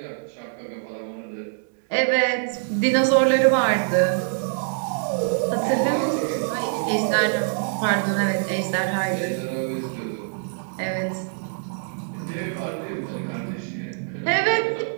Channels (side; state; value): left; silent; 62 dB below the other